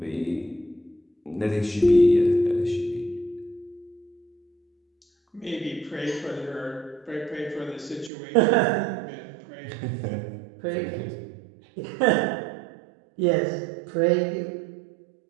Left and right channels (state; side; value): drops out; left; at 8.1 s